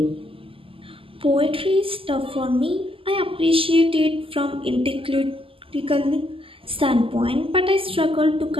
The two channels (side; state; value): left; late; 0.26 ms